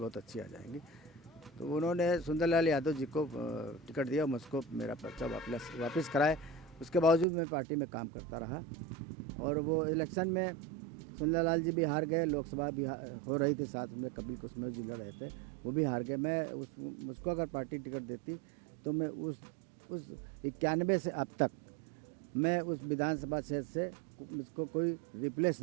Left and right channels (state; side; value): drops out; left; at 7.2 s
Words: अच्छी आ जाएंगी। तो उन्होंने सुंदरलाल यादव जी को टिकट दिया, मुझको मेरा पर्चा वापस कराए। उसके बावजूद मैं पार्टी में काम करता रहा और वो इलेक्शन में सुंदरलाल जी भी हार गए, लोकसभा भी हो रही थी, साथ में कपिल कुसमेव जी लड़ रहे थे, वो भी हार गए। मैं मुझको अगर पार्टी टिकट देती तो मैं उस 91 से अब तक मैं उस विधानसभा क्षेत्र से मुझको कोई रिप्लेस